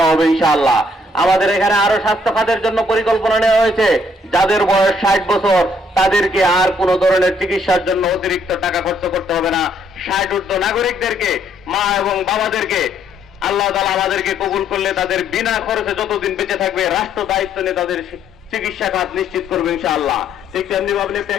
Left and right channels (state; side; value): normal; both; correlation 0.68